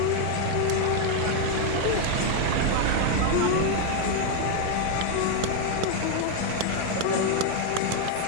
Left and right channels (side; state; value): both; different; correlation 0.01